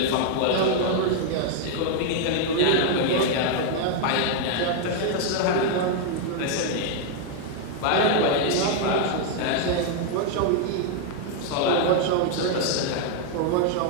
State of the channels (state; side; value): different; both; correlation 0.00